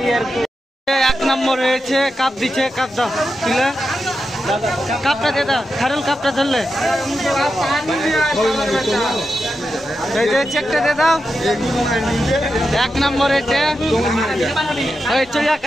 এক নম্বর হয়েছে, কাপ দিচ্ছে, কাপ দাও তুলে, কাপটা দে দাও, খারুল কাপটা ধরলে চেকটা দে দাও। এক নম্বর হয়েছে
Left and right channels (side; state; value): both; normal; correlation 0.89